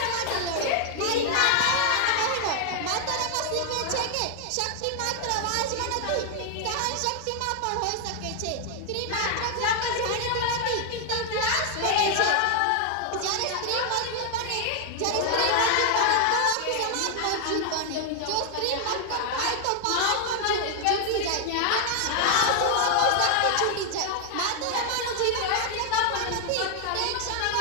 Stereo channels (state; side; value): different; both; correlation 0.00